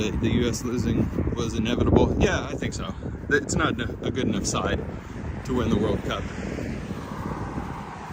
U.S. losing was inevitable. Yeah, I think so. It's not a good enough side to win the World Cup.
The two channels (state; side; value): identical; both; correlation 1.00